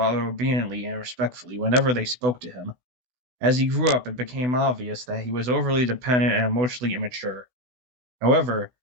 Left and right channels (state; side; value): late; left; 16 ms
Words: obediently and respectfully whenever they spoke to him. As he grew up, it became obvious that he was overly dependent and emotionally immature. However,